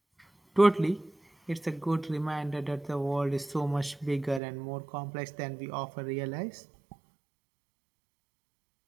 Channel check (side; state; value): left; drops out; at 4.4 s